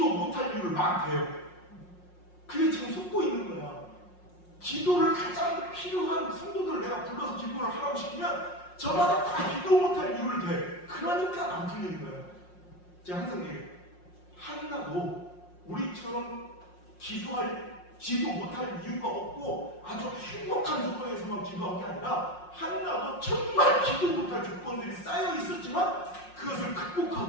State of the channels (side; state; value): right; late; 5.6 ms